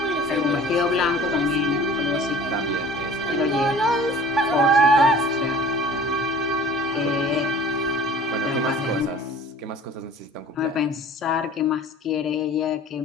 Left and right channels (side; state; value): both; normal; correlation 0.45